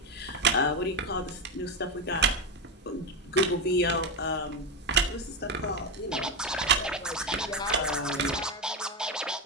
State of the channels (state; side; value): normal; both; correlation 0.10